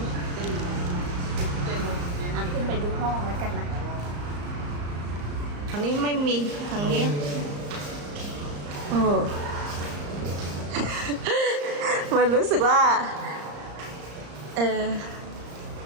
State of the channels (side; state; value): left; late; 34 ms